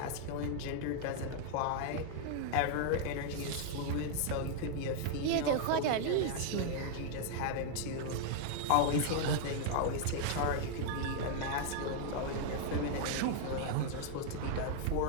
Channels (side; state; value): both; different; correlation 0.00